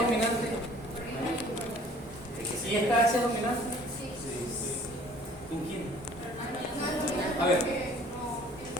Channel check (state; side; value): normal; both; correlation 0.53